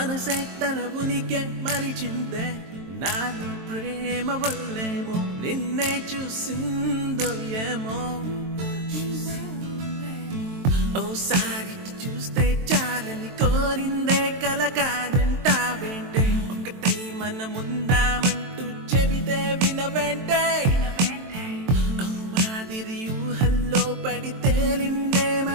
తన ఉనికి మరిచిందే నాలో ప్రేమ వల్లేమో నిన్నే చూసిందో ఏమో ఓసారి చూస్తే చాలని కోరిందే కల కాదంటావేంటే ఒకటై మనముందామంటూ చెబితే వినవేంటే మాదిరి ఊహల్లో పడి తేలిందే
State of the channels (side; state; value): left; late; 23 ms